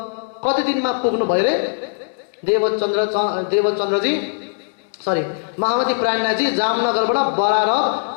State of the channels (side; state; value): right; silent; 66 dB below the other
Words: कति दिनमा पुग्नु भयो रे देवचन्द्रजी सरी महामती प्राणनाथजी जामनगरबाट बरारब